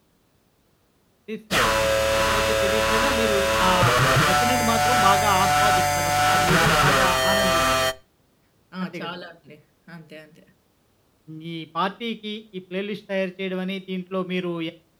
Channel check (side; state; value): both; identical; correlation 1.00